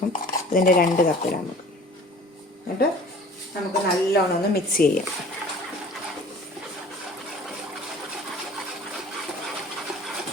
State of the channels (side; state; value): both; normal; correlation 0.46